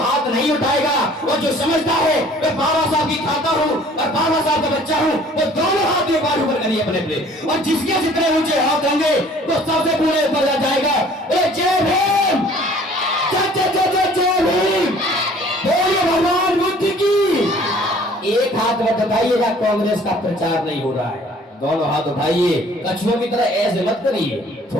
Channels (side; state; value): both; normal; correlation 0.53